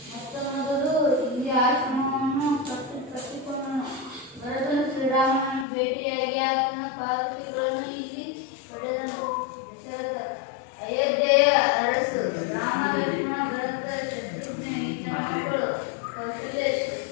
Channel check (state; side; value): drops out; right; at 5.7 s